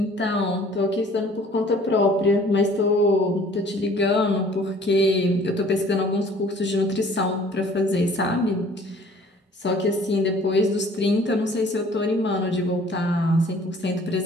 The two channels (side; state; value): both; normal; correlation 0.53